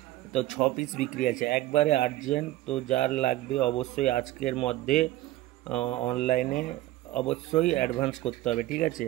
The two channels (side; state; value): left; quieter; 16.1 dB